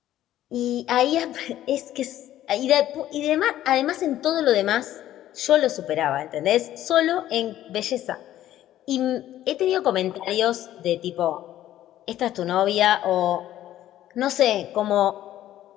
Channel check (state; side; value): quieter; right; 13.0 dB